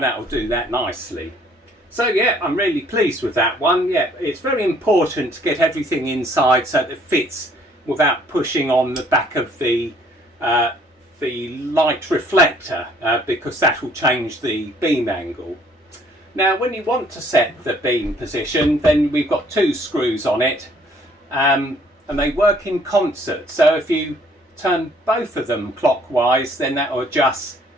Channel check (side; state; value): both; normal; correlation 0.61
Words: that'll do that nicely. So yeah, I'm really pleased with that one. Yeah, it's very important to get everything inside so that it fits without pushing on the back of the light reflector, because that will change the beam angle. Now when you want to set the beam position, then we've got two screws on it, and they work in concert. So if you turn both of them clockwise, then that will adjust